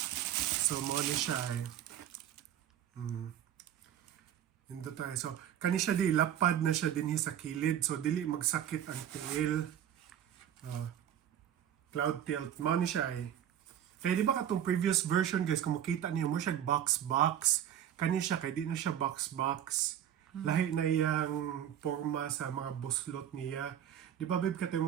So mo ni siya eh. Indo tayo. So, kani siya di, lapad na siya din sa kilid. So, dili magsakit ang tiil. Cloud tilt. Mao ni siya eh. Kaya di ba katong previous version guys, kung makita niyo mo siya box-box. Kani siya, kaya di na siya box-box. Lahi na iyang forma sa mga buslot niya. Di ba, babe,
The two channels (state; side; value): quieter; left; 10.3 dB